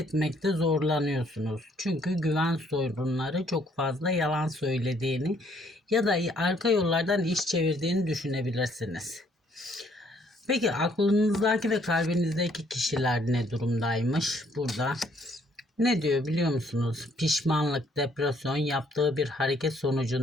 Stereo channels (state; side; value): normal; both; correlation 0.66